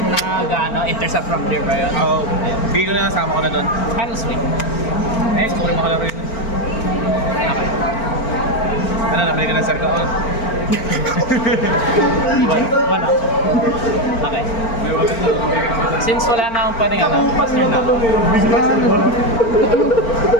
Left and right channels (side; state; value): right; late; 4.4 ms